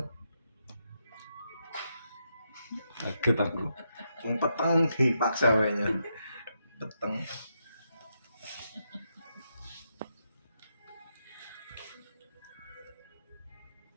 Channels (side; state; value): both; inverted; correlation -0.82